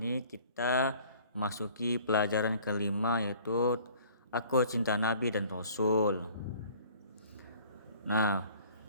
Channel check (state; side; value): inverted; both; correlation -0.52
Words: kita memasuki pelajaran kelima, yaitu Aku Cinta Nabi dan Rasul. Nah,